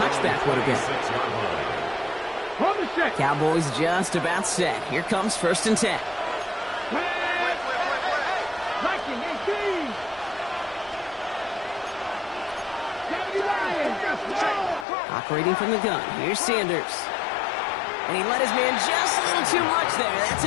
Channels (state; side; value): drops out; right; at 14.9 s